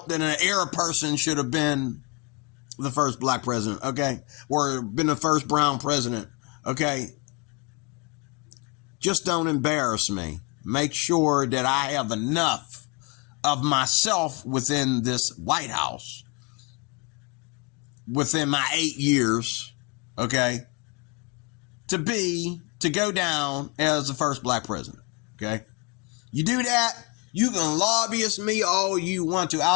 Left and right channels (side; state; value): right; quieter; 30.8 dB